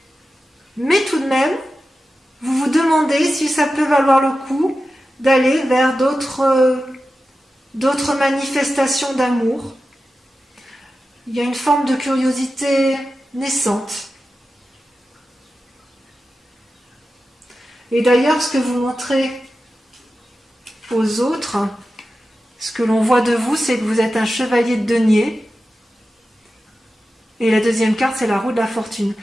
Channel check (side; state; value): both; normal; correlation 0.93